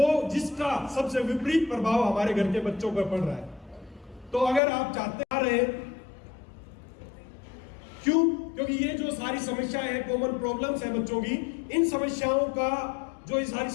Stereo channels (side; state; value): right; drops out; at 4.6 s